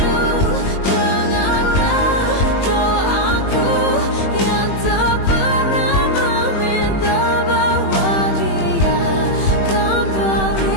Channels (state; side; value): late; right; 21 ms